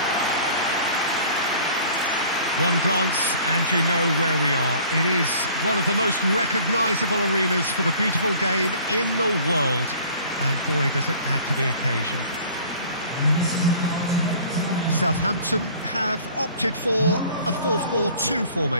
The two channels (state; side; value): inverted; both; correlation -0.50